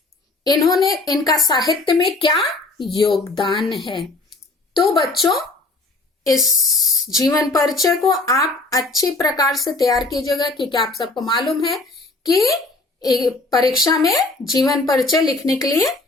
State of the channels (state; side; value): quieter; right; 3.1 dB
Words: इन्होंने इनका साहित्य में क्या योगदान है। तो बच्चों इस जीवन परिचय को आप अच्छी प्रकार से तैयार कीजिएगा, क्योंकि आप सबको मालूम है कि परीक्षा में जीवन परिचय लिखने के लिए